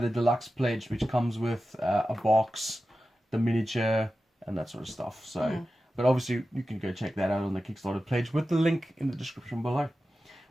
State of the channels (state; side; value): normal; both; correlation 0.93